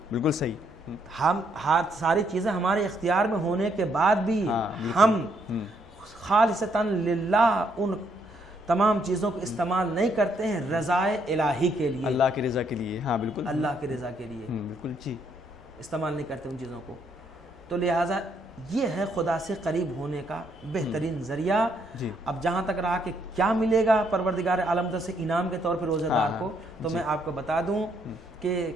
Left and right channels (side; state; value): both; normal; correlation 0.72